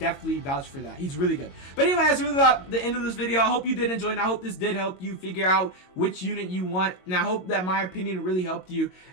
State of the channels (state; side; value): late; right; 22 ms